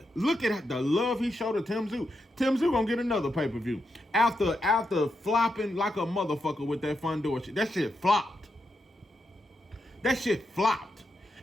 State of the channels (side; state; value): both; normal; correlation 0.84